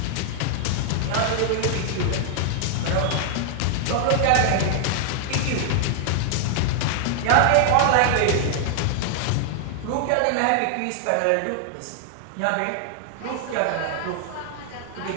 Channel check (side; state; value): both; different; correlation 0.00